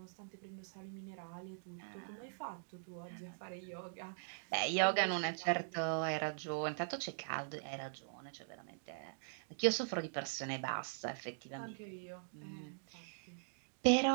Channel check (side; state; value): left; silent; digital silence